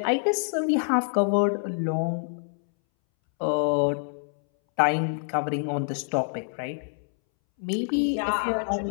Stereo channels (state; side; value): silent; right; 61 dB below the other